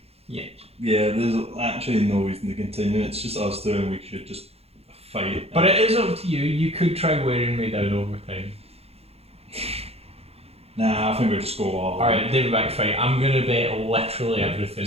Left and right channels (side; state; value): left; late; 0.29 ms